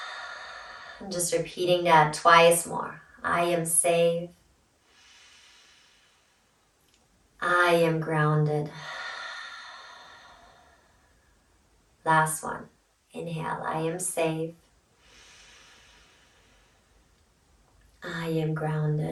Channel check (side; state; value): both; identical; correlation 1.00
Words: And just repeating that twice more. I am safe, I am grounded. Last one. Inhale, I am safe, I am